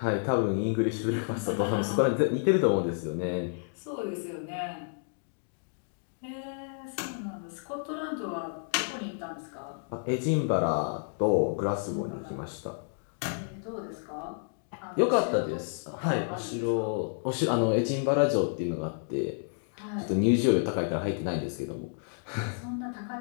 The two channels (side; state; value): right; silent; digital silence